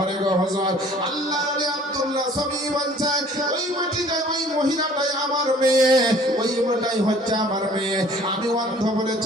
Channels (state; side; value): normal; both; correlation 0.53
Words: গো হুজুর। আল্লাহ আলী আব্দুল্লাহ সবই বলছে ওই মাটিটাই ওই মহিলাটাই আমার মেয়ে, ওই মেয়েটাই হচ্ছে আমার মেয়ে। আমি অন্ধ